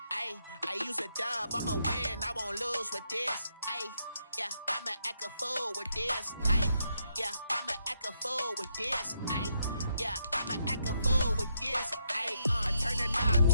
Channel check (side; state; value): both; inverted; correlation -0.78